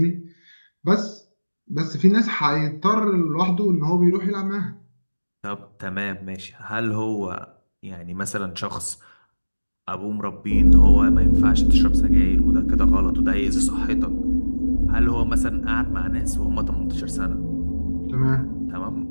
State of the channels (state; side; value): inverted; both; correlation -1.00